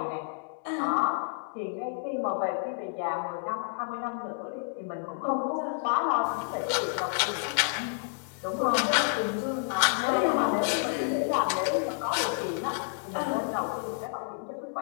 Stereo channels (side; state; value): right; silent; digital silence